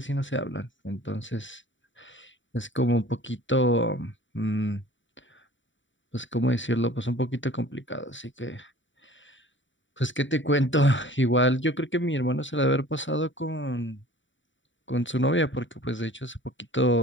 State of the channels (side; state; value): right; late; 0.55 ms